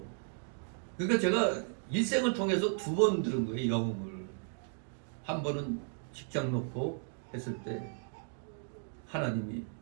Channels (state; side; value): silent; left; 54 dB below the other